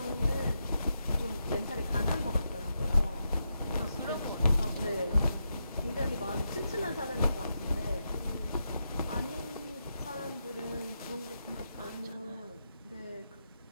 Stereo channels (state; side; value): inverted; both; correlation -0.85